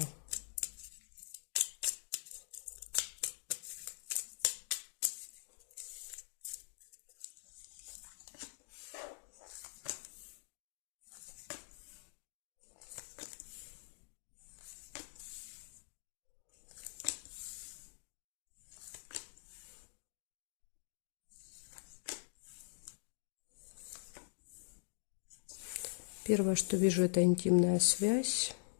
Первое, что вижу, это интимная связь.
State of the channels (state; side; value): silent; right; digital silence